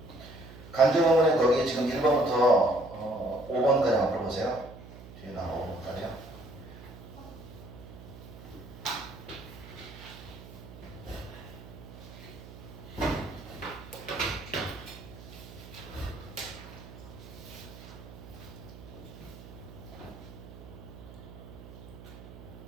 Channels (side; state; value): right; noise; hum, 16 dB below the sound